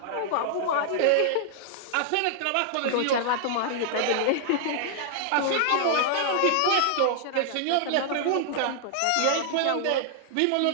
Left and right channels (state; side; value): different; both; correlation -0.01